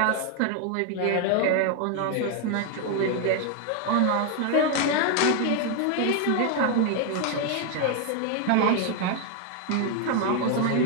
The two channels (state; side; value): different; both; correlation 0.01